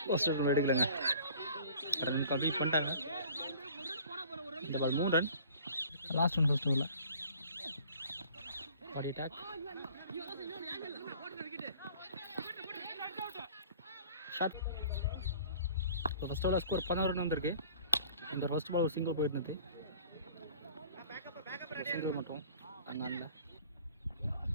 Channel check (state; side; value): inverted; both; correlation -0.49